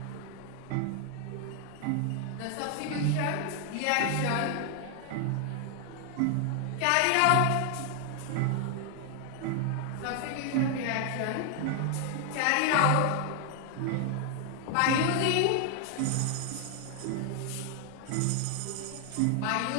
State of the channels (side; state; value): both; different; correlation 0.00